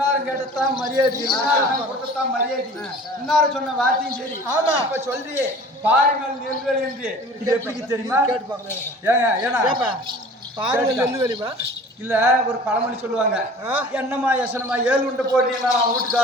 கேட்டதான் மரியாதை இன்னாரும் கொடுத்ததான் மரியாதை இன்னாரும் சொன்ன வார்த்தையும் சரி ஆமா. இப்ப சொல்றியே பாருங்கள் நெல்வேலி என்று இது எப்படி தெரியுமா கேட்டு பாக்கலாம் ஏங்க ஏன்னா பாருங்க நெல்லு வெளிமா இல்ல ஒரு பழமொழி சொல்லுவாங்க ஆ? என்னம்மா யசனமா 7 உண்டு போட்டீங்கன்னா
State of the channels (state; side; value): normal; both; correlation 0.44